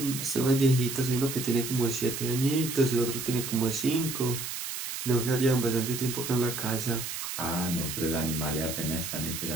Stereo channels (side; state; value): right; noise; hiss, 6 dB below the sound